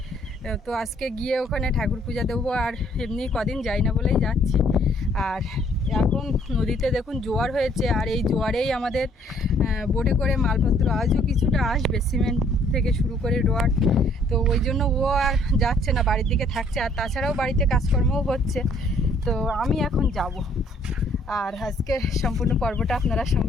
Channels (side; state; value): both; normal; correlation 0.62